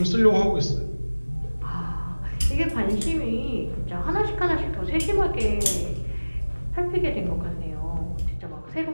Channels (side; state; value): both; inverted; correlation -1.00